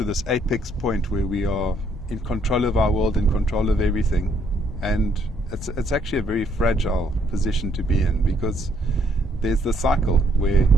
this apex point where we are in control of our world, in control of everything, and it's actually a very fragile position to be in, because there's the cycle where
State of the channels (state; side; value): normal; both; correlation 0.69